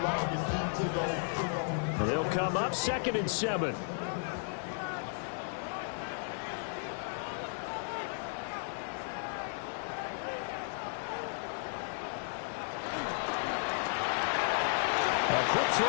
They'll come up 2nd and 7. Quick throw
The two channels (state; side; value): silent; right; 55 dB below the other